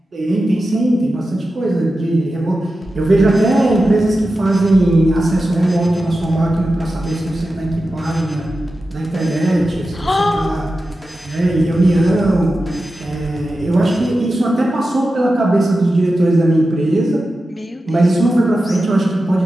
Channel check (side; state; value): both; normal; correlation 0.92